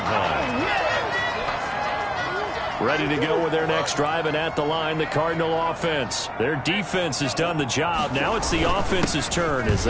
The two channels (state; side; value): identical; both; correlation 1.00